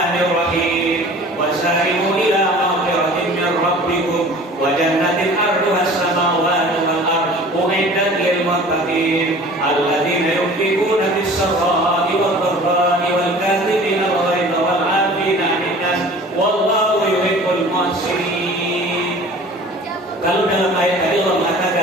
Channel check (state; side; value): normal; both; correlation 0.45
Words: Wasari'u ila maghfiratin min rabbikum wa jannatin 'arduha as-samawati wal ardu u'iddat lil muttaqin alladzina yunfiquna fis-sarra'i wad dharra'i wal kadhibina al-ghayza wal 'afina 'anil nas wallahu yuhibbul muhsinin. Kalau dalam ayat tadi Allah